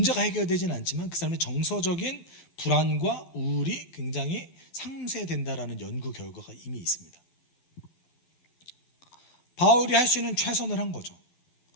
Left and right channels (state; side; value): late; right; 12 ms